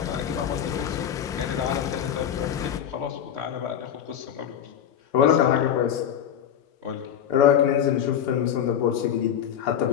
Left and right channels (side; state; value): right; quieter; 9.3 dB